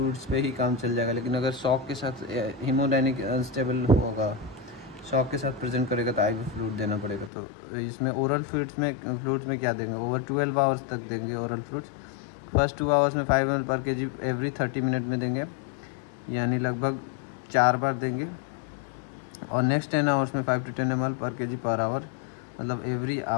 पे ही काम चल जाएगा, लेकिन अगर शॉक के साथ हीमोडायनिक अनस्टेबल होगा, शॉक के साथ प्रेजेंट करेगा तो आईवी फ्लूइड देना पड़ेगा। तो इसमें ओरल फ्लूइड्स में क्या देंगे, ओवर 12 आवर्स तक देंगे ओरल फ्लूइड्स। फर्स्ट 2 आवर्स में 5 ml पर केजी एवरी 30 मिनट में देंगे, यानी लगभग 4 बार देंगे। और नेक्स्ट 10 आवर्स में 5 to 10 ml पर केजी पर आवर, मतलब एवरी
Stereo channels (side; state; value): right; drops out; at 7.3 s